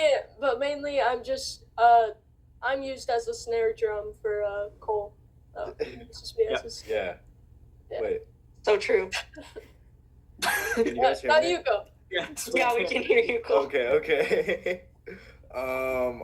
I'm just I'm used as a snare drum for Cole. It's just me as his- Yeah. Yeah. Wait. So true. Can you guys hear now me? you go. Yeah, we can hear you, Cole. Okay.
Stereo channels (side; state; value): both; identical; correlation 1.00